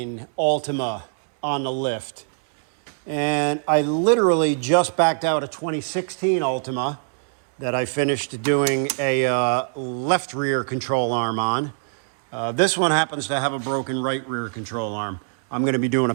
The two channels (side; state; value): left; silent; 64 dB below the other